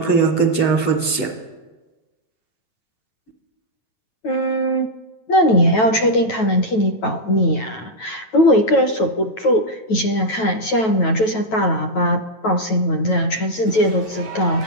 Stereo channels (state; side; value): late; right; 9.1 ms